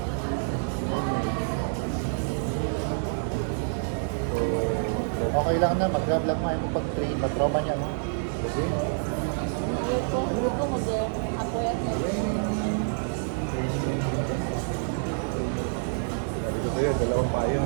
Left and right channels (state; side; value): silent; left; digital silence